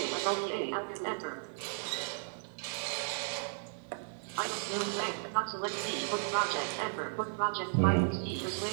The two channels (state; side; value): silent; left; digital silence